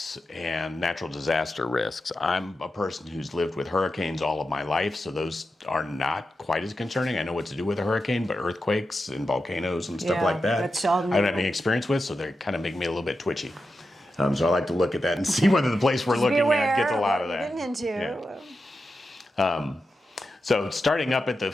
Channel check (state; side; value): normal; both; correlation 0.90